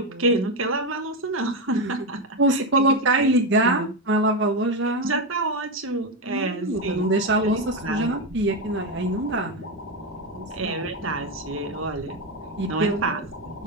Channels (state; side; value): normal; both; correlation 0.10